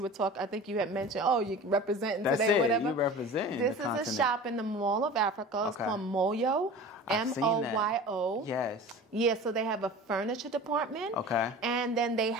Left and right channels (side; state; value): both; normal; correlation 0.37